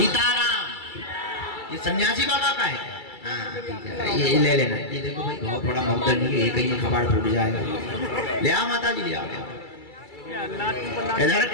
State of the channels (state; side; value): late; right; 2.3 ms